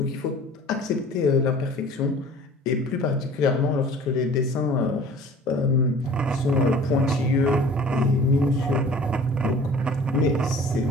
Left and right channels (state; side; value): normal; both; correlation 0.46